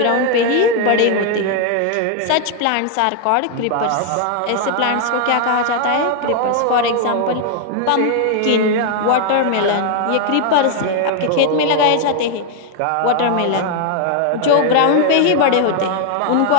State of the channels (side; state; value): both; different; correlation 0.00